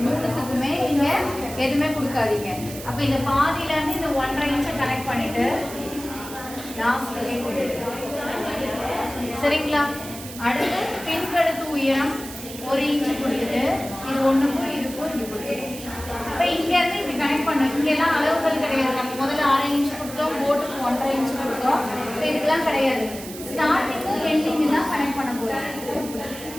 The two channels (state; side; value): noise; right; hiss, 13 dB below the sound